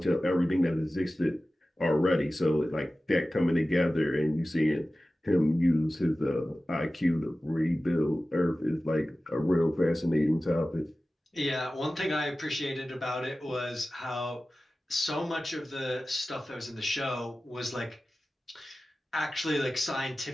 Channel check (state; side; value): normal; both; correlation 0.96